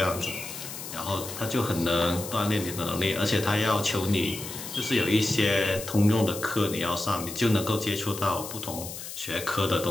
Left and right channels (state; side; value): noise; left; hiss, 9 dB below the sound